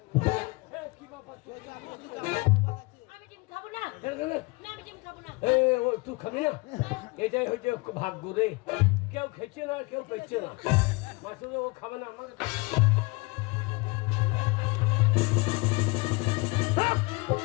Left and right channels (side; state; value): right; quieter; 26.2 dB